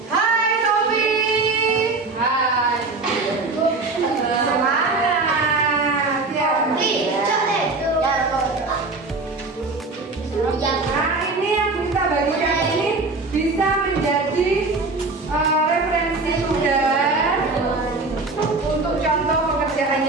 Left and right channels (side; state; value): left; quieter; 3.6 dB